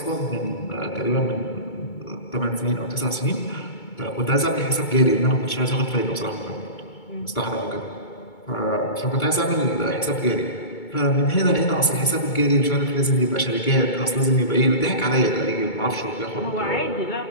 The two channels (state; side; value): late; right; 2.2 ms